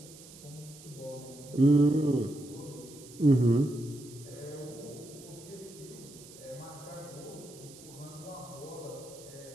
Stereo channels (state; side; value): noise; right; hiss, 19 dB below the sound